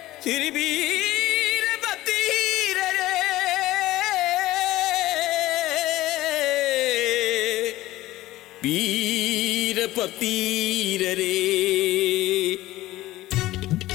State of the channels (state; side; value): quieter; right; 16.7 dB